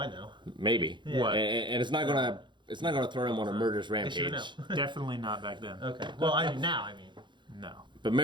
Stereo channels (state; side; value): late; left; 0.23 ms